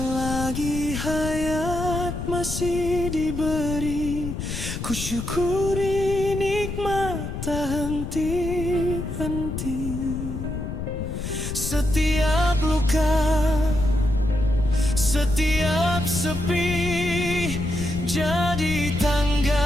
hayat masih diberi, ku syukuri nikmat tak henti-henti. Setiap luka, setiap sepi, jadi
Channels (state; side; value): noise; left; rumble, 5 dB below the sound